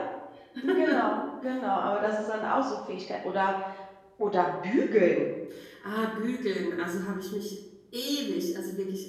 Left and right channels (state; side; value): identical; both; correlation 1.00